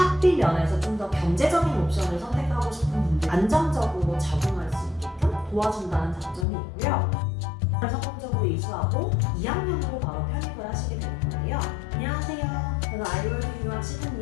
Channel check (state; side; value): drops out; right; at 6.5 s